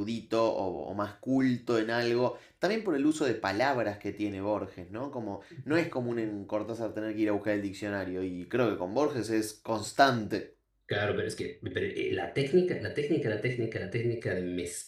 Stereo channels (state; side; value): identical; both; correlation 1.00